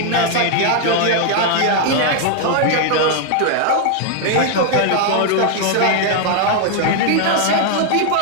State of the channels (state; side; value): different; both; correlation 0.00